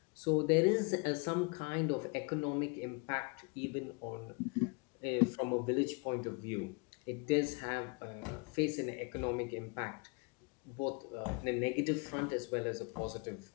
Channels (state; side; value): quieter; right; 32.5 dB